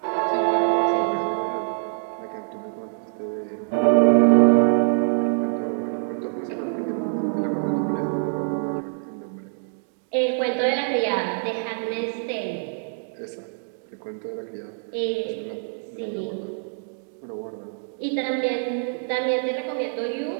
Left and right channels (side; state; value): left; silent; digital silence